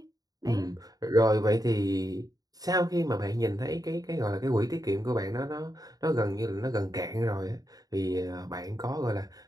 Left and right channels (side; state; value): left; late; 0.18 ms